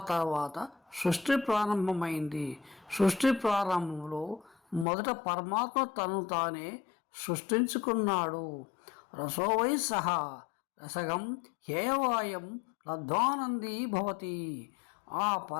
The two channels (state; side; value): drops out; right; at 4.9 s